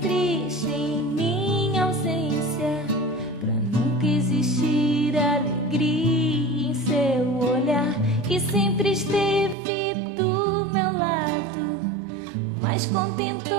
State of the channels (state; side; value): drops out; left; at 9.6 s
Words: em minha ausência, pra nunca existir alegria em seu olhar, que sempre esteve do meu lado, mas